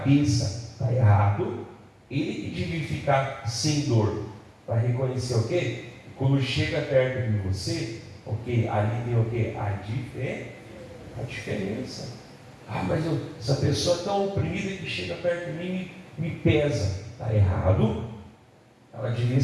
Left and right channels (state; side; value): identical; both; correlation 1.00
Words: está errado. Ele que devia ficar sem dor. Para reconhecer o quê? Quando chega perto de você, ali tem o quê? A diferença. Mas essa pessoa é tão oprimida que chega perto de mim e me pesa. Está errado. Ela devia